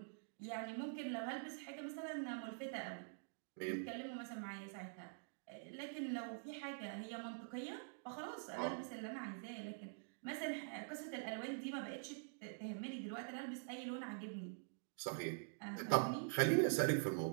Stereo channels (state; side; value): silent; left; digital silence